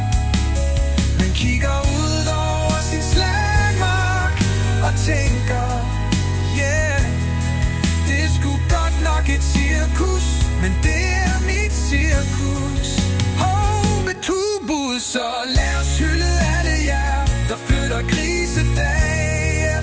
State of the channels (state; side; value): identical; both; correlation 1.00